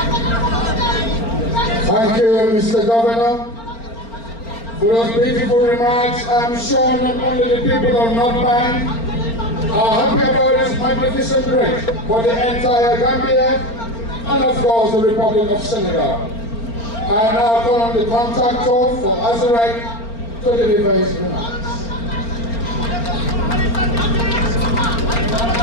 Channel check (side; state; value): right; late; 4.4 ms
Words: Thank you, Mr. Governor, for those beautiful remarks. I'm sure not only the people of North Bank are happy about this magnificent bridge, but the entire Gambia and of course the Republic of Senegal. I now call on the contractor for Azurek to deliver his remarks.